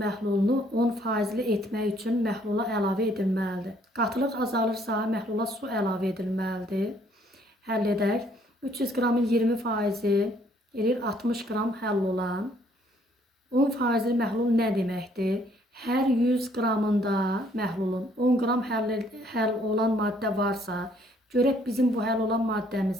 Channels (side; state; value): both; normal; correlation 0.64